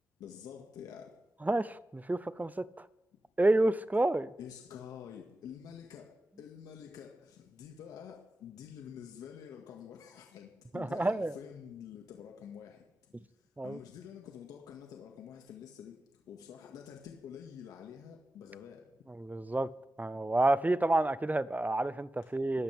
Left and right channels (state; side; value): normal; both; correlation 0.93